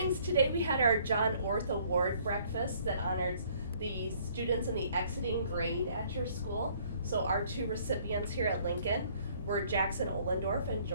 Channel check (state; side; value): inverted; both; correlation -0.61